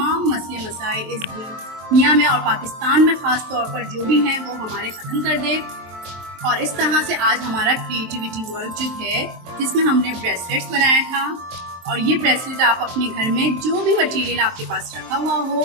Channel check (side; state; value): left; late; 23 ms